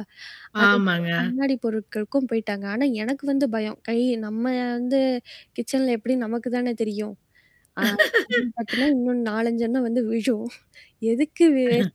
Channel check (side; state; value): both; identical; correlation 1.00